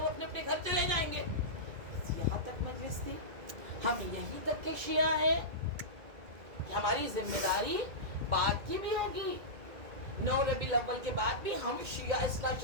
अपने अपने घर चले जाएंगे, यहाँ तक मजलिस थी, हम यहीं तक के शिया हैं कि हमारी जिम्मेदारी बाद की भी होगी। 9 रबीउल अव्वल के बाद भी हम शिया इस्ना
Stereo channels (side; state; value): left; late; 2.2 ms